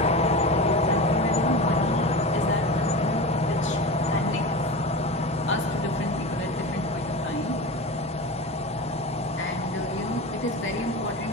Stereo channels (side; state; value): both; normal; correlation 0.27